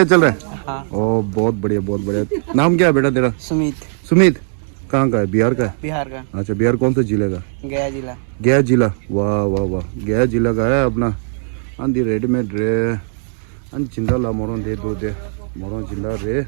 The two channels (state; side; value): silent; left; digital silence